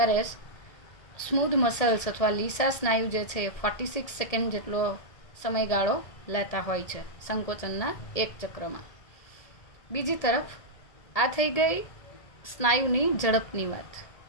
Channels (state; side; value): late; right; 1.8 ms